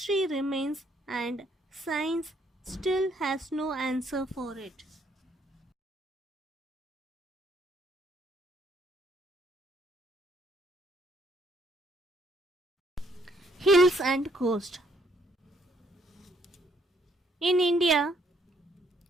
remains and science still has no answer for it. Hills and coast. In India,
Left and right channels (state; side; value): normal; both; correlation 0.68